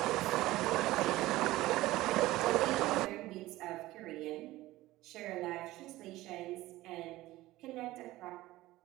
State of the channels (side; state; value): left; quieter; 17.3 dB